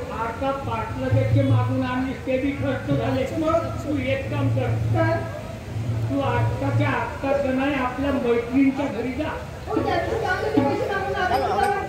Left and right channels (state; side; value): identical; both; correlation 1.00